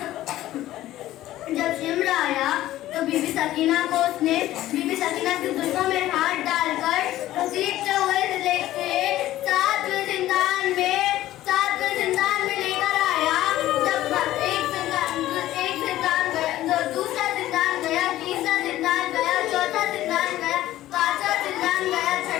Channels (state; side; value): quieter; right; 14.6 dB